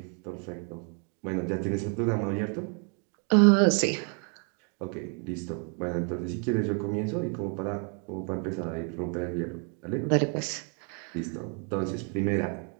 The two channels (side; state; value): left; quieter; 38.8 dB